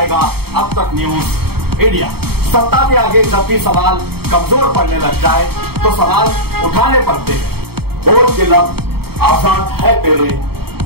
अब तक न्यूज इंडिया। सत्ता के आगे जब भी सवाल कमजोर पड़ने लग जाए तो सवाल उठाने पड़ते हैं। बोल के लफ्ज आजाद है तेरे,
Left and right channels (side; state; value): left; late; 0.96 ms